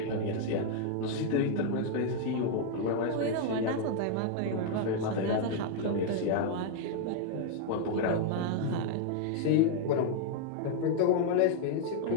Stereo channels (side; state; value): both; different; correlation 0.00